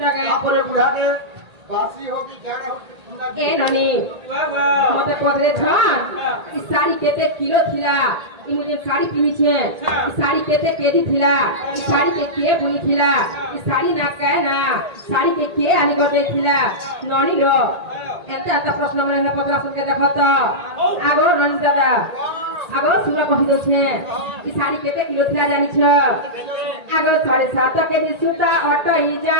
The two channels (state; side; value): late; left; 1.8 ms